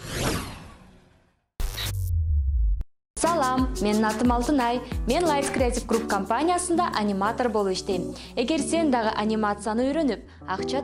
Салам, менин атым Алтынай. Мен Lights Creative Group компаниясында аниматор болуп иштейм. Эгер сен дагы анимацияны үйрөнүп, акча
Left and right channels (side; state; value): both; identical; correlation 1.00